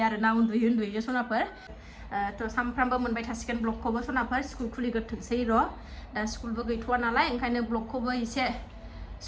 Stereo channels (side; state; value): both; identical; correlation 1.00